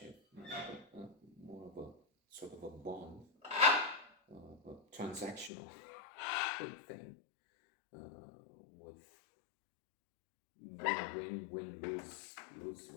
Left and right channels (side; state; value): right; drops out; at 5.5 s